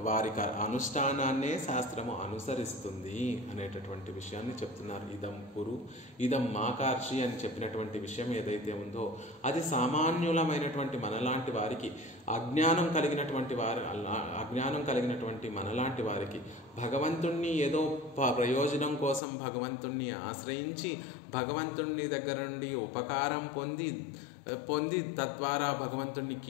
వారి అనుష్ఠానాన్నే శాస్త్రము అనుసరిస్తుంది అనేటటువంటి విషయాన్ని చెప్తున్నారు. ఇదం కురు ఇదం మాకార్షి అని చెప్పినటువంటి విషయం ఏదైతే ఉందో అది సామాన్యులమైనటువంటి మనలాంటి వారికి, అజ్ఞానం కలిగినటువంటి మనలాంటి వారికి భగవంతుణ్ణి ఏదో ప్రయోజనం కోసం భగవంతుణ్ణి ఆశ్రయించి భగవంతుని దగ్గర నుండి ఉపకారం పొంది తద్వారా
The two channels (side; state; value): right; drops out; at 19.2 s